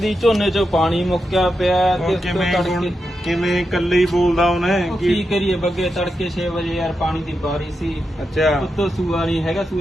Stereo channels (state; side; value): normal; both; correlation 0.87